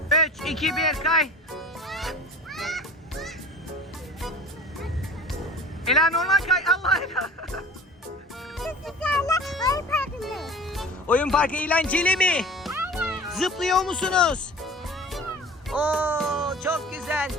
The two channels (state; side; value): normal; both; correlation 0.40